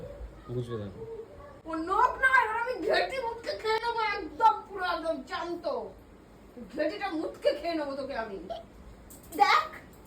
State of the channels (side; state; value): both; identical; correlation 1.00